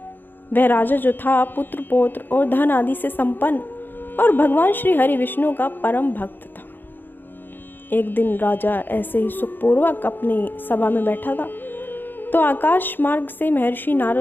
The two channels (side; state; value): right; late; 0.094 ms